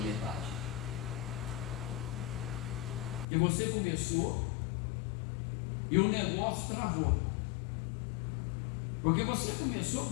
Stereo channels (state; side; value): drops out; right; at 3.2 s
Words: metade. Que você começou e o negócio travou. Porque você começou